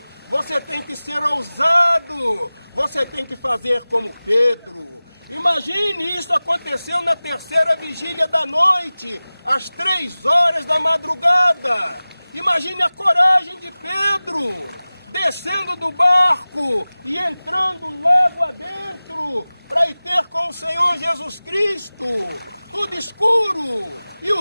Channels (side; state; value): both; inverted; correlation -0.98